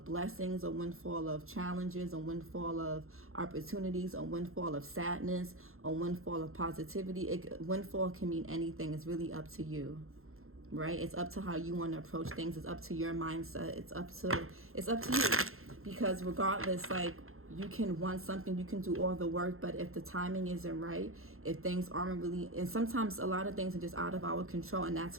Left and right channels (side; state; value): left; late; 0.62 ms